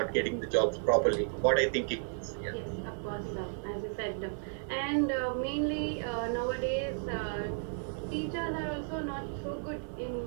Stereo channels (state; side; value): silent; left; 55 dB below the other